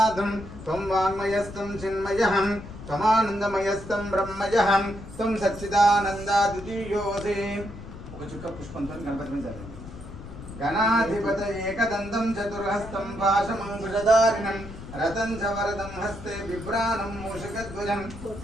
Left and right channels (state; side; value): noise; left; rumble, 13 dB below the sound